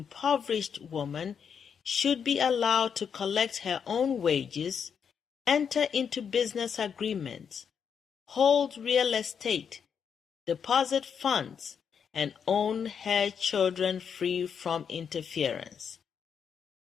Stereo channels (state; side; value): quieter; right; 7.1 dB